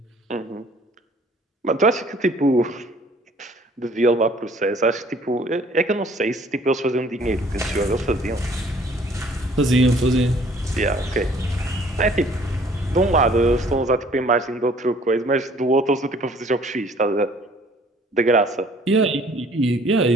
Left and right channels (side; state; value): both; normal; correlation 0.56